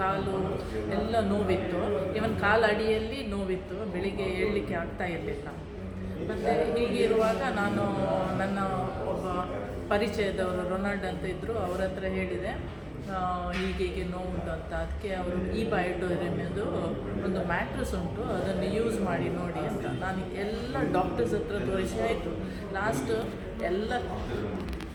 ಎಲ್ಲ ನೋವಿತ್ತು. ಇವನ್ ಕಾಲು ಅಡಿಯಲ್ಲಿ ನೋವಿತ್ತು. ಬೆಳಿಗ್ಗೆ ಏಳಲಿಕ್ಕೆ ಆಗ್ತಾ ಇರಲಿಲ್ಲ. ಮತ್ತು ಹೀಗಿರುವಾಗ ನಾನು ನನ್ನ ಒಬ್ಬ ಪರಿಚಯದವರು ರೊನಾಲ್ಡ್ ಅಂತ ಇದ್ದರು, ಅವ್ರ ಹತ್ರ ಹೇಳಿದೆ ಹೀಗೆ ನೋವುಂಟು ಅಂತ. ಅದಕ್ಕೆ ಅವರು ಬಯೋಟೋರಿಯಮ್ದು ಒಂದು ಮ್ಯಾಟ್ರಸ್ ಉಂಟು, ಅದನ್ನು ಯೂಸ್ ಮಾಡಿ ನೋಡಿ ಅಂತ. ನಾನು ಎಲ್ಲ ಡಾಕ್ಟರ್ಸ್ ಹತ್ರ ತೋರಿಸಿ ಆಯಿತು. ಲಾಸ್ಟ್ ಎಲ್ಲ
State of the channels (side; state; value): both; identical; correlation 1.00